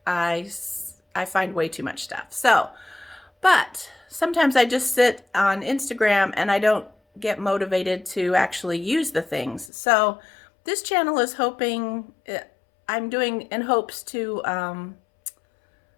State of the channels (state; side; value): drops out; right; at 9.7 s